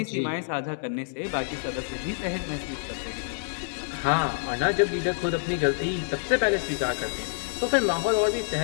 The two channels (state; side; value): silent; right; digital silence